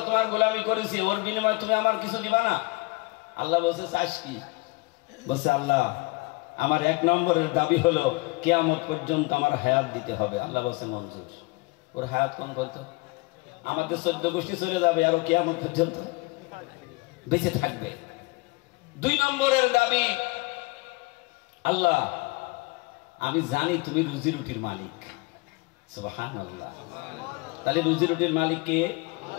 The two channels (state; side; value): quieter; right; 25.1 dB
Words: তোমার গোলামি করেছি, ওর বিনিময়ে তুমি আমার কিছু দিবা না? আল্লাহ বলছে, চাস কি? বলছে, আল্লাহ আমার 1 নম্বরের দাবি হলো কিয়ামত পর্যন্ত আমার হায়াত দিতে হবে। আল্লাহ বলছে, মঞ্জুর। ওর হায়াত কোন কত? আমাদের 14 গোষ্ঠী চলে যাবে, আর কিয়ামত পর্যন্ত বেঁচে থাকবে। 2 নম্বরের দাবি, আল্লাহ আমি জানি তুমি রুজি রুটির মালিক। সুবহানাল্লাহ। তাহলে রুজি রুটির মালিক কে?